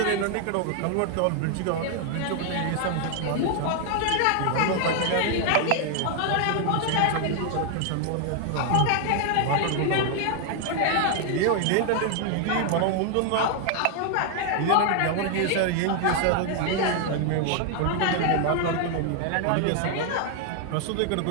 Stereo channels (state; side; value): different; both; correlation 0.00